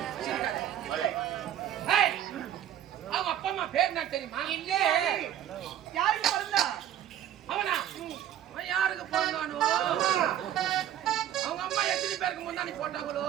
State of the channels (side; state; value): left; quieter; 11.1 dB